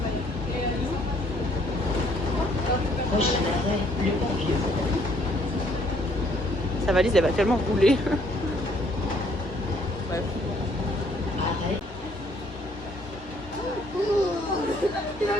Sa valise, elle va tellement rouler. Bref.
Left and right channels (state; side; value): normal; both; correlation 0.64